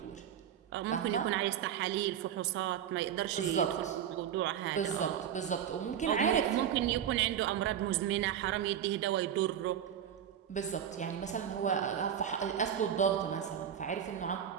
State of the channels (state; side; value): quieter; left; 9.4 dB